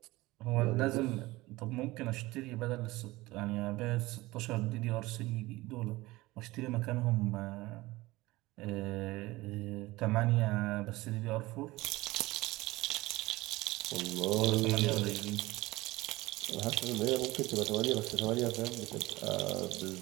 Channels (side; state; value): left; quieter; 19.8 dB